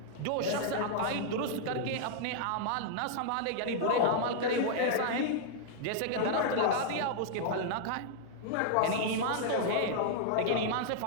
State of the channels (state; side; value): different; both; correlation -0.01